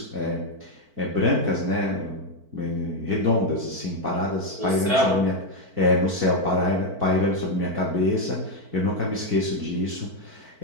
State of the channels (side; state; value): left; late; 4.5 ms